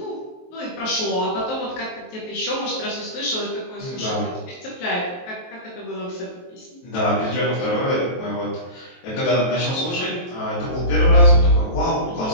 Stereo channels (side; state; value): right; late; 23 ms